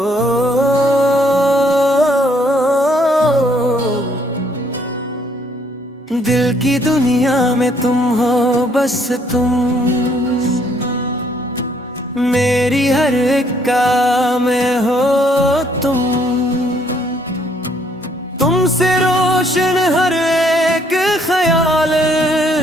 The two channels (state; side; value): normal; both; correlation 0.66